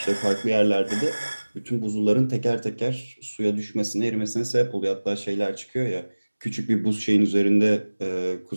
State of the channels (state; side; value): inverted; both; correlation -1.00